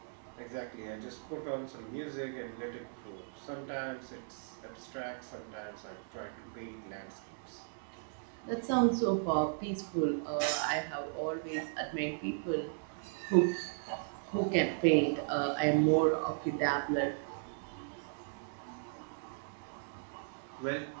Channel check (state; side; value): silent; left; digital silence